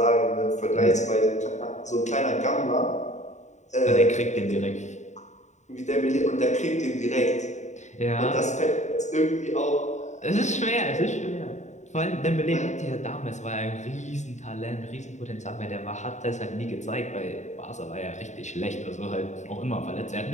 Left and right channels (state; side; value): late; right; 0.34 ms